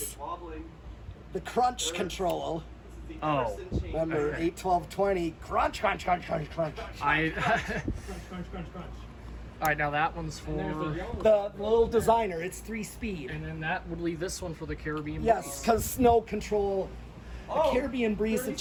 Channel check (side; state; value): both; identical; correlation 1.00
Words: the crunch control. Oh. Remember, Okay. 8, 12, 20, crunch, crunch, crunch, crunch, crunch. I. Crunch, crunch, crunch. All right, now that one's for. The little designer, it's 3-speed. And then that would leave this one for the Caribbean. Yes, Breeze. because snow control. The Oh, Caribbean Breeze, it